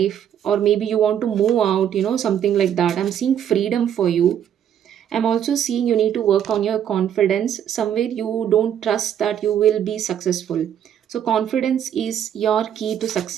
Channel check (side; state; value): left; quieter; 9.6 dB